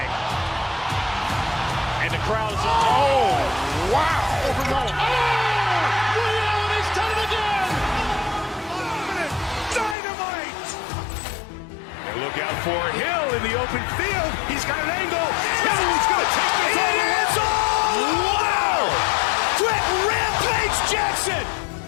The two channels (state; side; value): drops out; right; at 10.0 s